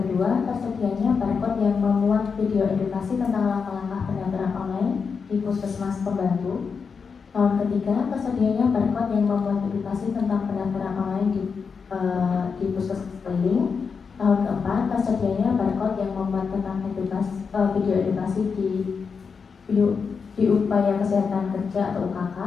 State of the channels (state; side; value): quieter; right; 5.6 dB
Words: tersedianya barcode yang memuat video edukasi tentang langkah-langkah pendaftaran online di Puskesmas Pembantu. Tahun ketiga, tersedianya barcode yang memuat edukasi tentang pendaftaran online di Puskesmas Keliling. Tahun keempat, tersedianya barcode yang memuat tentang video edukasi di upaya kesehatan kerja atau UKK.